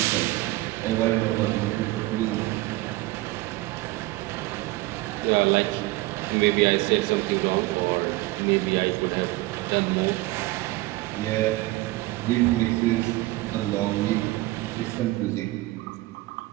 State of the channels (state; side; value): quieter; left; 19.5 dB